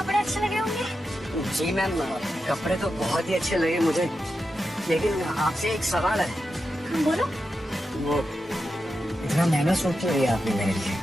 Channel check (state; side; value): normal; both; correlation 0.89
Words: अच्छे लगे होंगे। जी मैम, कपड़े तो बहुत ही अच्छे लगे मुझे, लेकिन आपसे एक सवाल है। हाँ, बोलो। वो इतना महंगा सूट क्यों लिया आपने मेरे लिए?